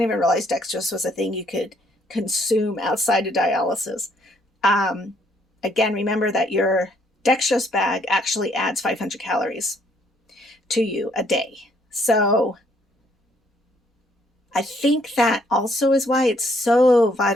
even realize dextrose was a thing you could consume outside of dialysis. Again, remember that your dextrose bag actually adds 500 calories to you a day. So I think that also is why it's so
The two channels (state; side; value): normal; both; correlation 0.68